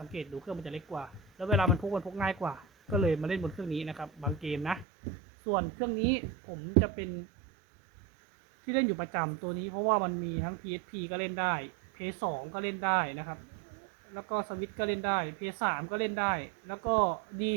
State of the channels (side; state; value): left; drops out; at 4.9 s